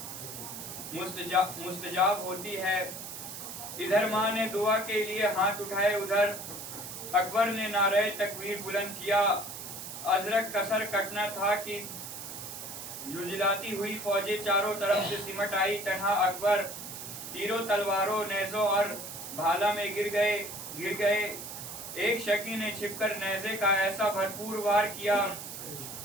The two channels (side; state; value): right; noise; hiss, 9 dB below the sound